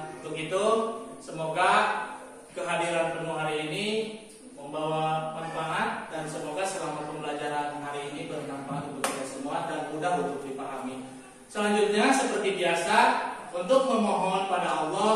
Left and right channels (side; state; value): both; identical; correlation 1.00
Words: Untuk itu semoga kehadiran penuh hari ini membawa manfaat dan semoga selama pembelajaran hari ini bermanfaat untuk kita semua dan mudah untuk dipahami. Selanjutnya seperti biasa, untuk memohon pada